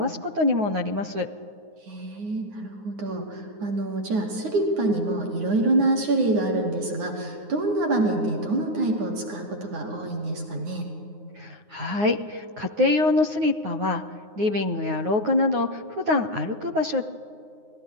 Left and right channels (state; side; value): late; left; 9.6 ms